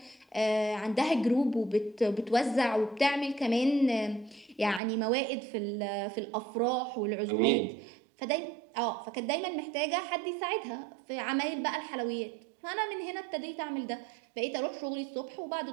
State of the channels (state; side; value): drops out; left; at 4.8 s